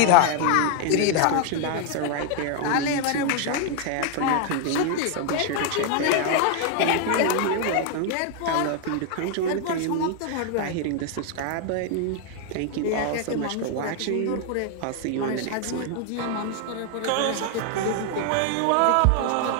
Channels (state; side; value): different; both; correlation 0.00